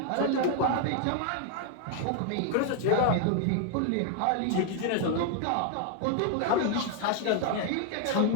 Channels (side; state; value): both; different; correlation 0.00